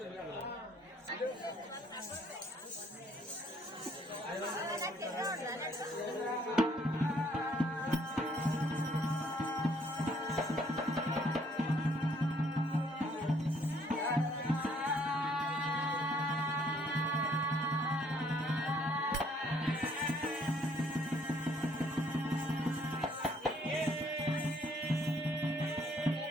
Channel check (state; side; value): normal; both; correlation 0.64